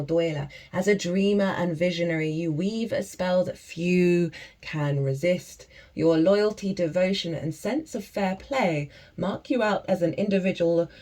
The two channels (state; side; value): identical; both; correlation 1.00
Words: As a dreamer and visionary, you weave a spell that few can resist. Your loyalty, devotion, and sense of fair play mark you out as an individual